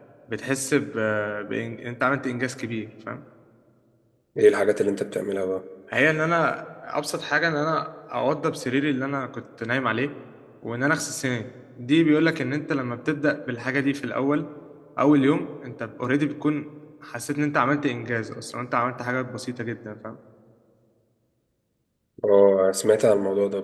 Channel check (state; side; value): identical; both; correlation 1.00